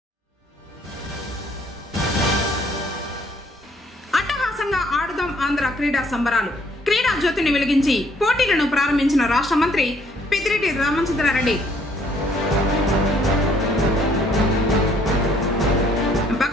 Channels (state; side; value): normal; both; correlation 0.64